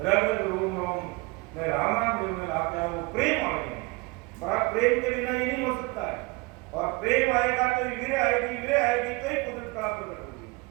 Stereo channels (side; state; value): left; quieter; 25.7 dB